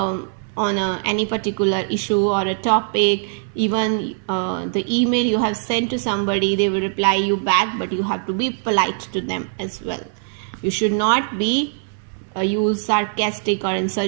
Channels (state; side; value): silent; left; 61 dB below the other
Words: any particular issue or a topic. Even the email you have sent to somebody, they will reply you back, but you have to be polite to them as well. You should not be use sarcastic or